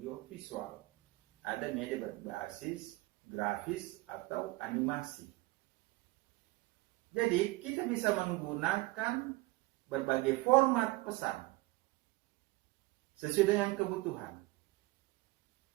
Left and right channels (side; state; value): left; quieter; 21.2 dB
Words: visual. Ada media berbasis grafis atau animasi. Jadi kita bisa menggunakan berbagai format pesan sesuai dengan kebutuhan.